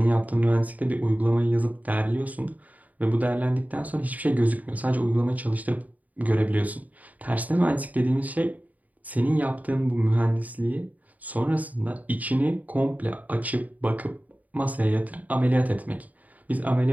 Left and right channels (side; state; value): left; late; 0.075 ms